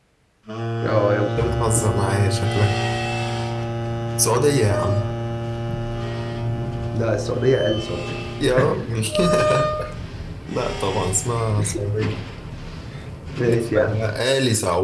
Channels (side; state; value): both; identical; correlation 1.00